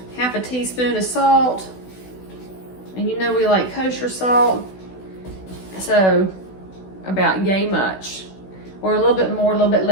half a teaspoon of salt. And you know we like kosher salt, so about yay much. Or a little bit more, a little bit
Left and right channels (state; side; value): late; right; 16 ms